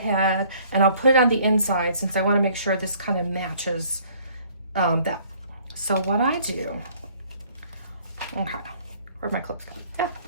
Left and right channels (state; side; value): inverted; both; correlation -0.58